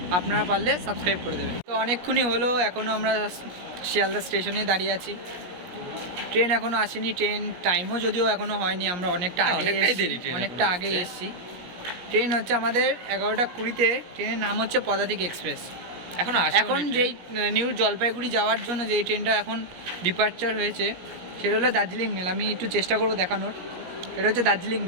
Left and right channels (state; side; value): late; left; 17 ms